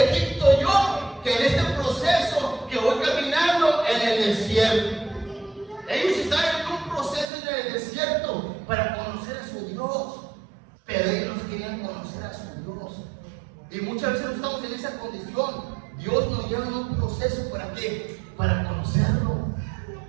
Egipto yo que en este proceso que voy caminando en el desierto. Ellos estaban en un proceso en el desierto para conocer a su Dios, pero ellos no querían conocer a su Dios. Y muchas veces no estamos en esa condición. Dios nos lleva en un proceso, ¿para qué? Para conocerlo.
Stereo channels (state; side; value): drops out; left; at 7.2 s